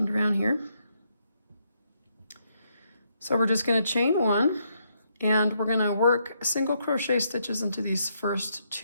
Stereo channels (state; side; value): inverted; both; correlation -0.76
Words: it around here. So we're just going to chain 1, and we're going to work single crochet stitches into these first